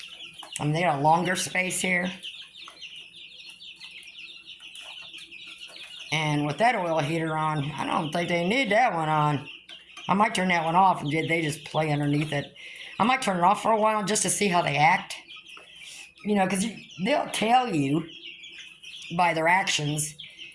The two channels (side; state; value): both; identical; correlation 1.00